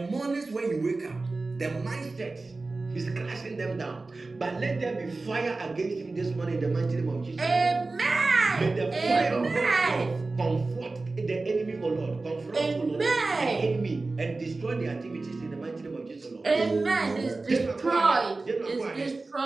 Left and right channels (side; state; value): left; quieter; 3.5 dB